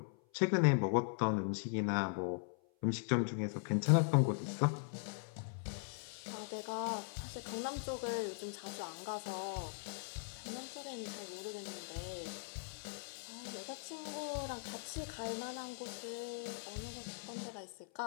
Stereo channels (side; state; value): right; silent; 51 dB below the other